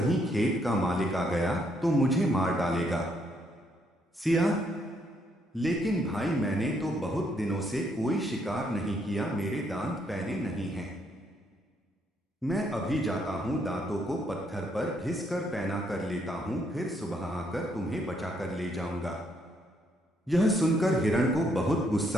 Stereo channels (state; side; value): normal; both; correlation 0.72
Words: खेत का मालिक आ गया तो मुझे मार डालेगा। सियार, लेकिन भाई मैंने तो बहुत दिनों से कोई शिकार नहीं किया, मेरे दांत पैने नहीं हैं। मैं अभी जाता हूं, दांतों को पत्थर पर घिस कर पैना कर लेता हूं, फिर सुबह आकर तुम्हें बचा कर ले जाऊंगा। यह सुनकर हिरण को बहुत